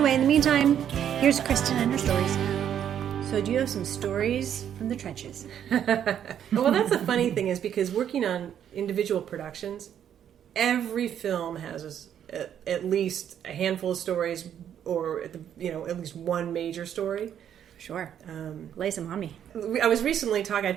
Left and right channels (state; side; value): quieter; left; 9.5 dB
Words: in the meantime, here's Cristen and her stories. So do you have some stories from the trenches? Well, that's the funny thing is because working on individual productions, every film has at least a handful of stories or, at least one major story. Sure. Lay some on me. I was recently I